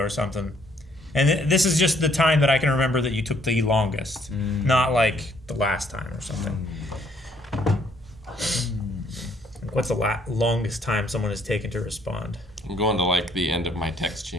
something, and this is just the time that I can remember that you took the longest, not like the last time or something. What's the longest time someone has taken to respond? I'm going to like the end of my text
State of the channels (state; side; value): normal; both; correlation 0.66